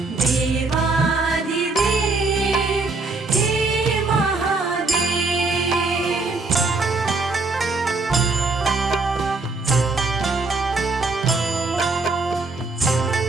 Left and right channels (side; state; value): left; quieter; 3.6 dB